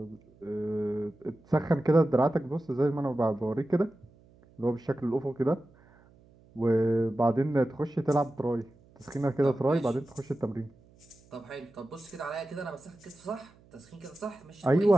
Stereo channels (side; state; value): right; noise; hum, 28 dB below the sound